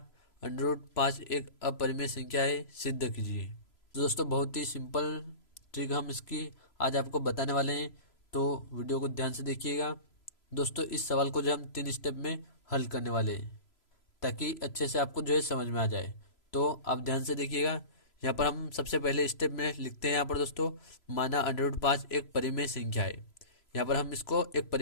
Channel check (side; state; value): right; late; 3.0 ms